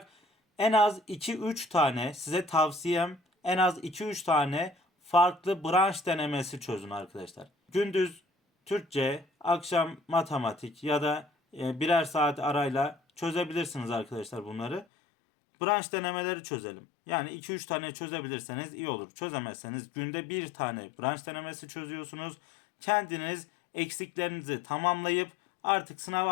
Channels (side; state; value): right; drops out; at 14.9 s